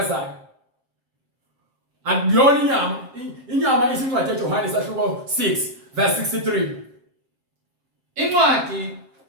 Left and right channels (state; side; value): late; left; 7.6 ms